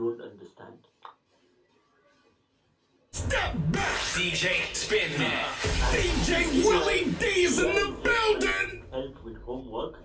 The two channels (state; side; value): identical; both; correlation 1.00